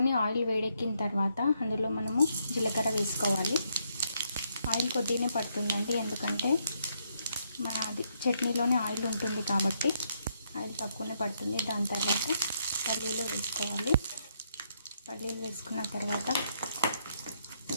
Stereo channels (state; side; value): inverted; both; correlation -0.75